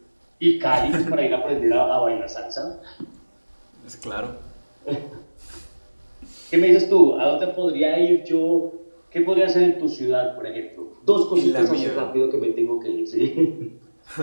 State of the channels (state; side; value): inverted; both; correlation -1.00